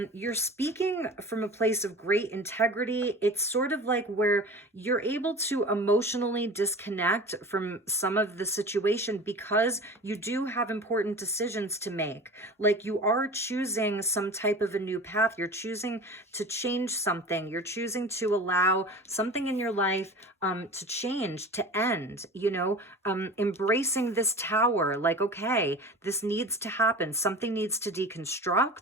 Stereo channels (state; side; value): normal; both; correlation 0.36